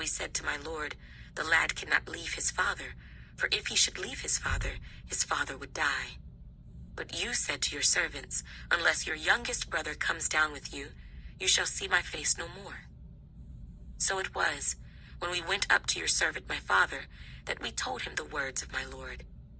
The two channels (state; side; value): identical; both; correlation 1.00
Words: said to my Lord, The lad cannot leave his father, for if he should leave his father would die. But you said to your servants, Unless your youngest brother comes down with you, you shall see my face no more. So it was, when we went up to your servant my father, that we told him the words of my Lord.